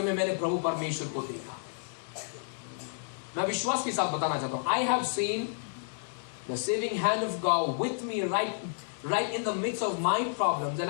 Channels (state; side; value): silent; right; digital silence